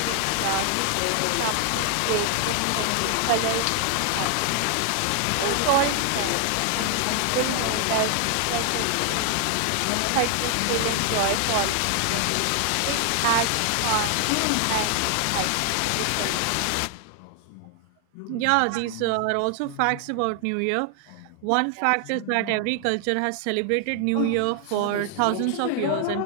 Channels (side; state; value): both; different; correlation 0.00